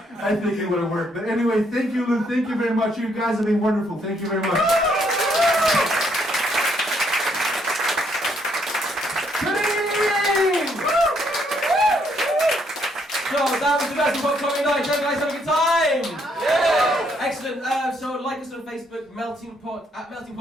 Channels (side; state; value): both; normal; correlation 0.71